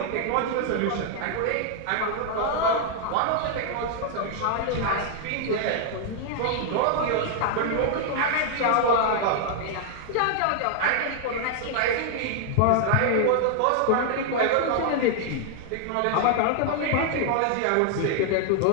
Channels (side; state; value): both; different; correlation 0.00